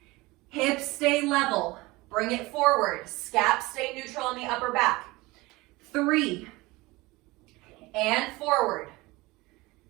Hips stay level. Bring it forward. Scaps stay neutral on the upper back. 3. And forward.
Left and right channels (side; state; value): left; quieter; 21.7 dB